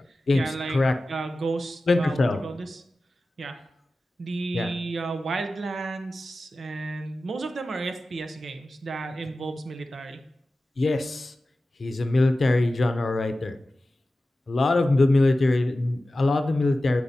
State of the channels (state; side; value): normal; both; correlation 0.95